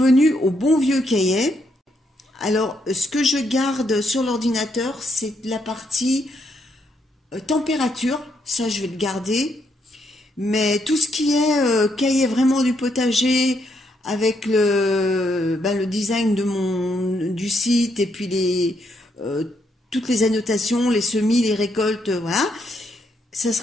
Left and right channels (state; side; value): normal; both; correlation 0.76